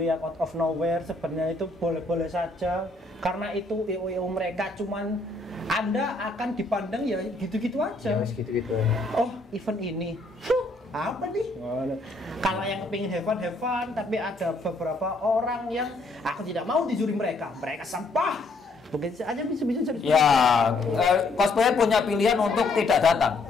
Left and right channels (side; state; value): right; quieter; 3.2 dB